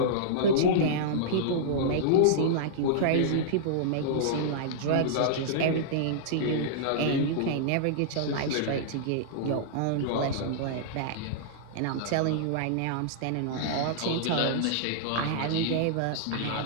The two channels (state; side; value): different; both; correlation -0.02